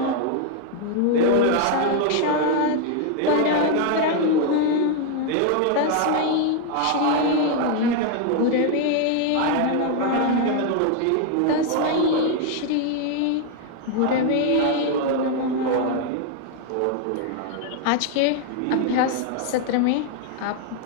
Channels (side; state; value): both; different; correlation 0.00